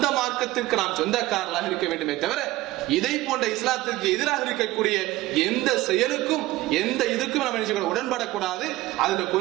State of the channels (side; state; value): left; quieter; 17.6 dB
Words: மார்க்கத்திற்கு நாம் சொந்தக்காரர்களாக இருக்க வேண்டுமே தவிர இதை போன்ற இஸ்லாத்திற்கு எதிராக இருக்கக்கூடிய எந்த செயலுக்கும் எந்த இதுக்கும் நம்ம நினைச்சு உடன்படக்கூடாது. அதுல